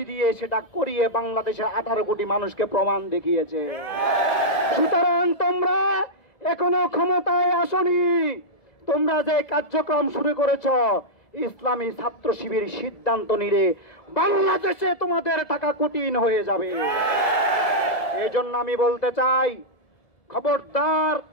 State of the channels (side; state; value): right; late; 1.7 ms